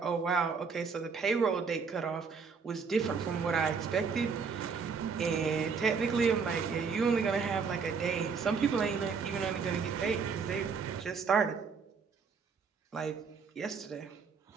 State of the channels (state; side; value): quieter; left; 5.5 dB